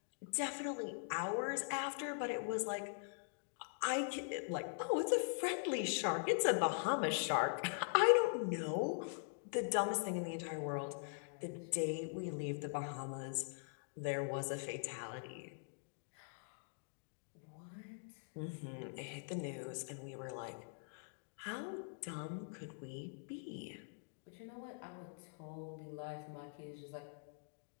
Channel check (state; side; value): silent; right; digital silence